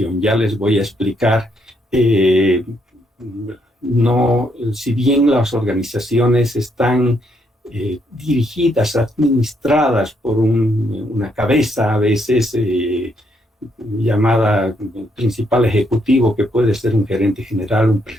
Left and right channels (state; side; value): normal; both; correlation 0.75